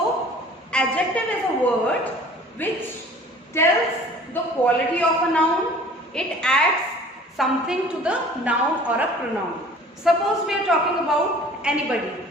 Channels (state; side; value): normal; both; correlation 0.48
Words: adjective is a word which tells the quality of a noun, it adds something to the noun or a pronoun. Suppose we are talking about anybody